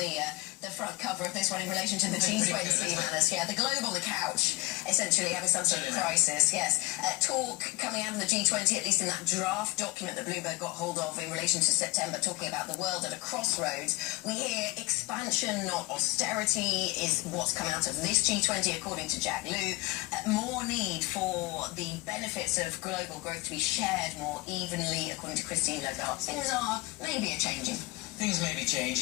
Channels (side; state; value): right; quieter; 22.2 dB